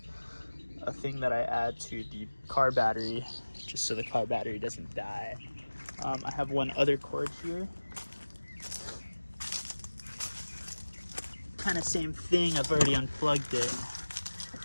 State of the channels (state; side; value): inverted; both; correlation -1.00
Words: thing that I add to the car battery just so the car battery doesn't die. I have one other cord here. Kind of same thing, I've already unplugged it,